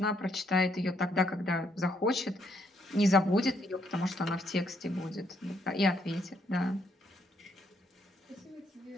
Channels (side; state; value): both; normal; correlation 0.73